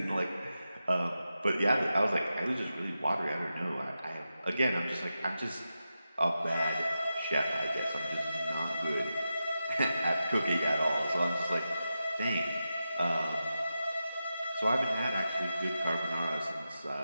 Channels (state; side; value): inverted; both; correlation -0.91